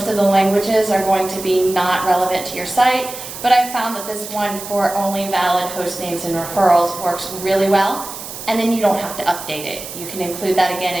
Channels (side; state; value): right; noise; hiss, 11 dB below the sound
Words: of the languages are going to be not relevant to your site. But I found that this one for only valid host names and referrals works really well, and then you don't have to update it. You can include that again